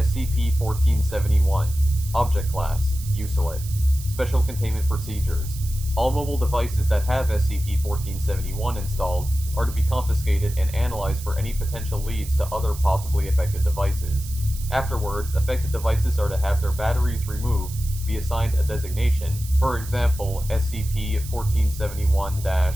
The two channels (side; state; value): right; noise; hiss, 15 dB below the sound